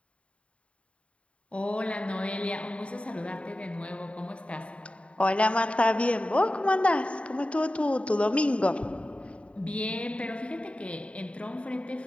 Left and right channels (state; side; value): late; right; 0.062 ms